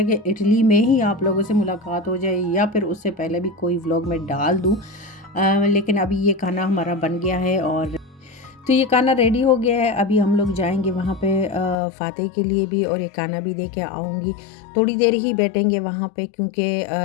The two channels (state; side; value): drops out; right; at 11.8 s